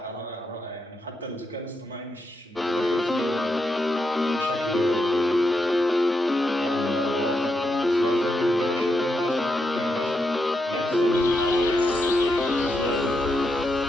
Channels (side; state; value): both; normal; correlation 0.83